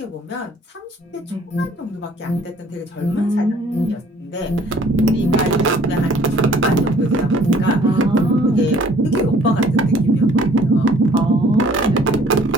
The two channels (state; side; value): normal; both; correlation 0.57